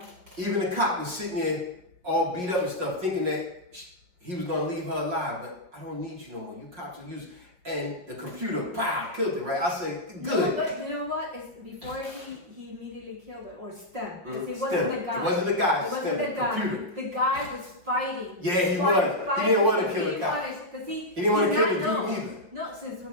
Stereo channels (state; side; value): late; left; 5.7 ms